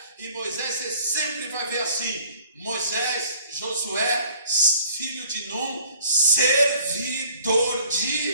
e Moisés, você sempre vai ver assim: Moisés, Josué, filho de Num, servidor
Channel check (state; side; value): inverted; both; correlation -0.54